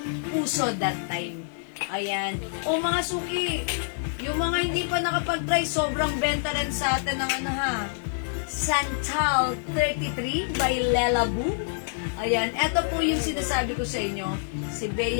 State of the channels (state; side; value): silent; right; digital silence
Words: uso that time. Ayan. O mga suki, yung mga hindi pa nakapag-try, sobrang benta rin sa atin ng Santal 33 by Lela Boo. Ayan, eto po yung sinasabi ko sa inyo, si